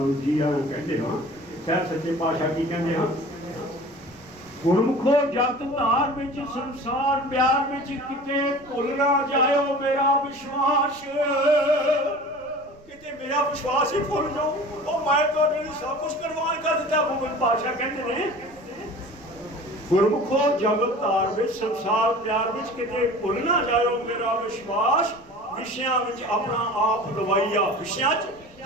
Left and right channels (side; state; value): right; noise; rumble, 26 dB below the sound